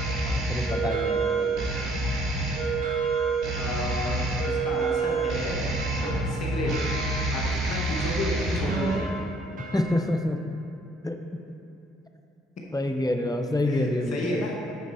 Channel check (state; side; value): normal; both; correlation 0.63